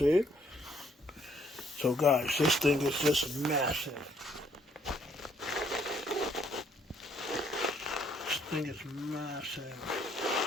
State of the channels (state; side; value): normal; both; correlation 0.67